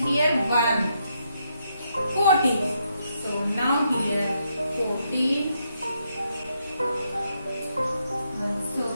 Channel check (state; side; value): inverted; both; correlation -0.78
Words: here 1. 14. So now here 14. Also